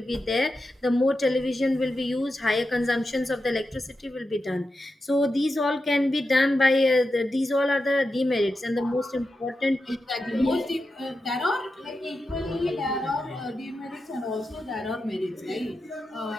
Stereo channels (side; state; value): both; normal; correlation 0.89